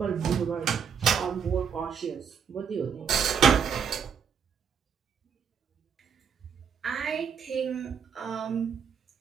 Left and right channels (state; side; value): quieter; left; 7.1 dB